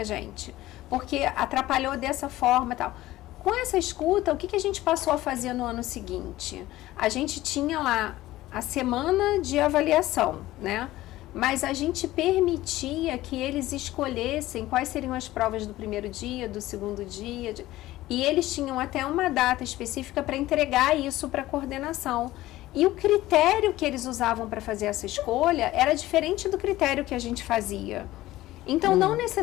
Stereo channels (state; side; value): quieter; right; 16.3 dB